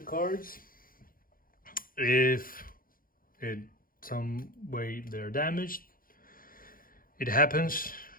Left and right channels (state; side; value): late; right; 0.41 ms